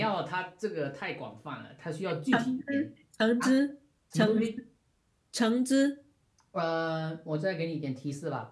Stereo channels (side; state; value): both; identical; correlation 1.00